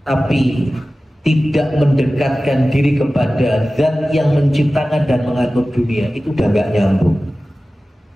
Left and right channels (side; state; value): both; normal; correlation 0.96